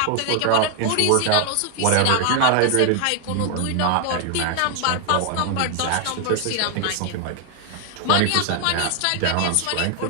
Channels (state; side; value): different; both; correlation 0.00